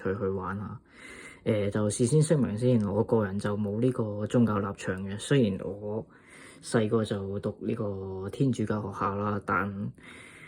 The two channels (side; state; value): both; identical; correlation 1.00